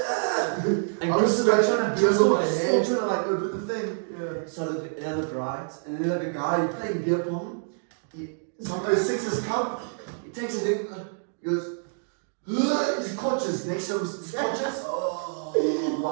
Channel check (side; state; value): left; silent; digital silence